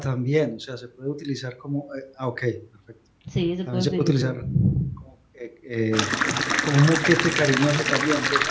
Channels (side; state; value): both; identical; correlation 1.00